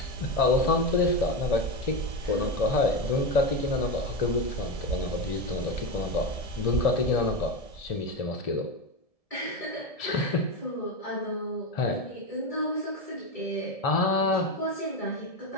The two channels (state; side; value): late; right; 1.7 ms